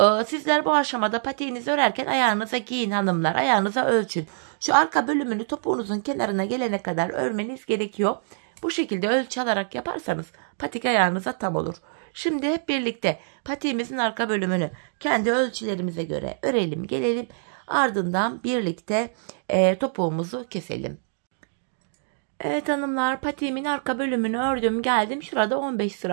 Sizler bu aşamada patiğinizi örerken ayağınıza giyin hanımlar. Ayağınıza ölçün. Şu arka bölümünü topuğunuzun kenarına gelene kadar örmeniz gerekiyor. Bu şekilde ölçü alarak yaparsanız patik ayağınıza tam olur. Şimdi hep birlikte patiğimizin arka bölümünü kendi ölçülerimize göre örelim, gelelim. Ardından birlikte topuğumuzu keselim. Evet hanımlar, patiğimin arka bölümünü ördüm, geldim. Şurada 15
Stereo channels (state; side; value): silent; left; digital silence